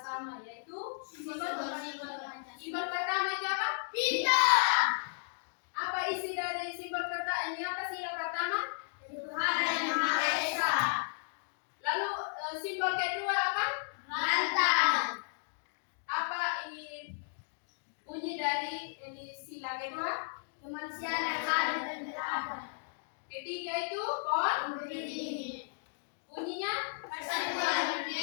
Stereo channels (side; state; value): right; silent; digital silence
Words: yaitu simbol pertama itu apa? Bintang. Apa isi dari simbol pertama? Ini apa sila pertama? Tuhan yang Maha Esa. Lalu simbol kedua apa? Lantang. Apa ini bunyi dari ini sila kedua? Kemanusiaan yang adil dan beradab. Ketiga itu pon. Berdiri. Bunyinya Persatuan